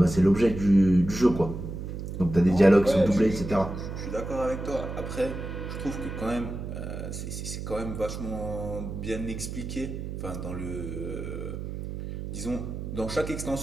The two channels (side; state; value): right; noise; hum, 7 dB below the sound